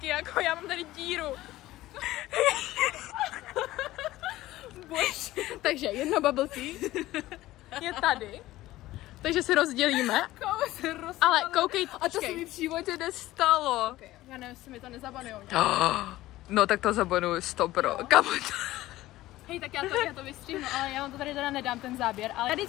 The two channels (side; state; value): right; quieter; 16.4 dB